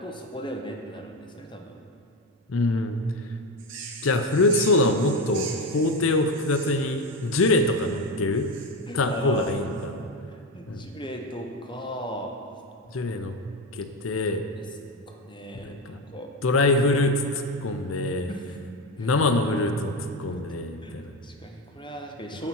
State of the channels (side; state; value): both; normal; correlation 0.15